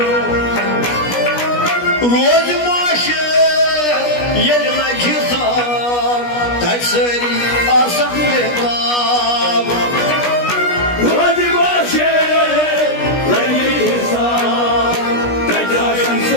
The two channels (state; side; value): late; right; 17 ms